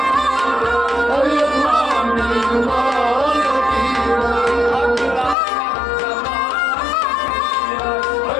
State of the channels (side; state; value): right; drops out; at 5.4 s